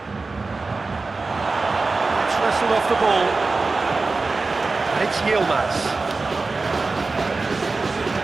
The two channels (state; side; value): quieter; left; 3.8 dB